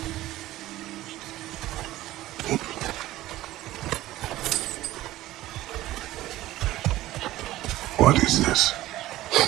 What is this?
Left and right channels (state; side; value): quieter; left; 15.8 dB